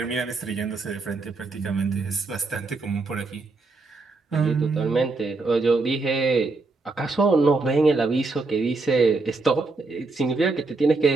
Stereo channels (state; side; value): quieter; left; 3.6 dB